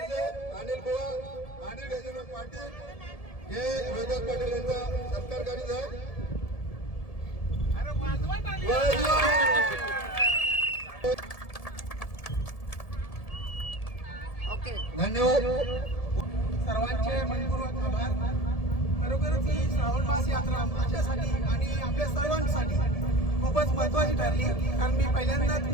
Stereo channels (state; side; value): late; right; 1.7 ms